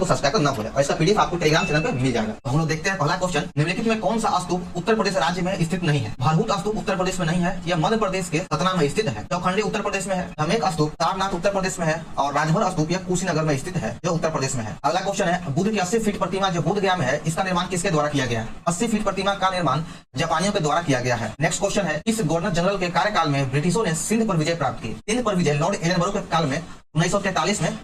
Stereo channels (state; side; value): identical; both; correlation 1.00